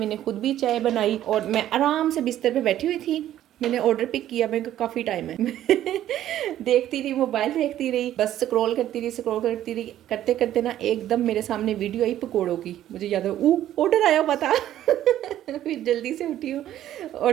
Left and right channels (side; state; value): left; quieter; 12.3 dB